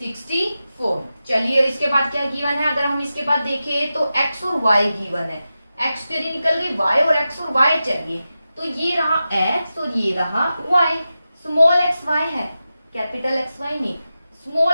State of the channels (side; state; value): both; inverted; correlation -0.92